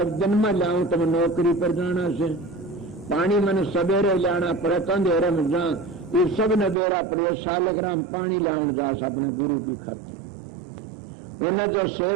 दिन में लाऊं तो मैं नौकरी पर जाना से, पानी मैंने सवेरे लाना पड़े तो अंधेरे में जा, ये सब ने बेड़ा पड़े। शालिग्राम पानी लाऊं जा अपने गुरु की खातिर। उन्हें जो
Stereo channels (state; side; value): drops out; left; at 6.8 s